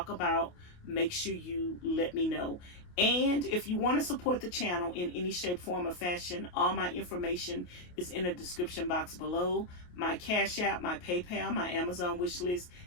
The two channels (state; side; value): late; right; 28 ms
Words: about, make sure you let me know. And if you want to support the channel in any shape, form, or fashion, all my information is in the description box below. My Cash App, my PayPal, my Amazon wish list,